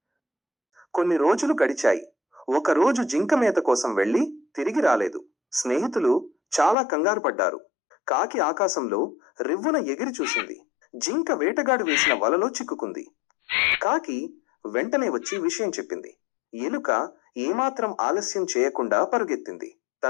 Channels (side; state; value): right; drops out; at 6.8 s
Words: కొన్ని రోజులు గడిచాయి. ఒకరోజు జింక మేత కోసం వెళ్లి తిరిగి రాలేదు. స్నేహితులు చాలా కంగారు పడ్డారు. కాకి ఆకాశంలో రివ్వున ఎగిరి చూసింది. జింక వేటగాడు వేసిన వలలో చిక్కుకుంది. కాకి వెంటనే వచ్చి విషయం చెప్పింది. ఎలుక ఏమాత్రం ఆలస్యం చేయకుండా పరుగెత్తింది.